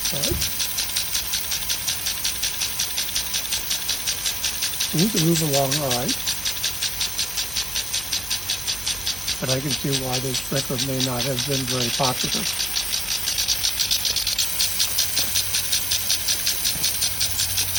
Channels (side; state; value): right; noise; hum, 16 dB below the sound